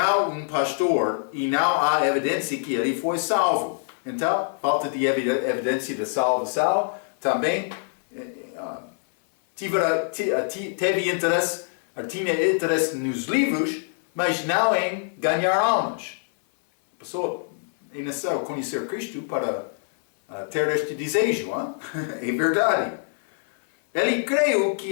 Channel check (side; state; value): right; silent; digital silence